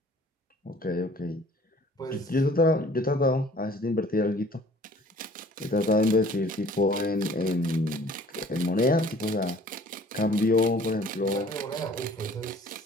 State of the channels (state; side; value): normal; both; correlation 0.52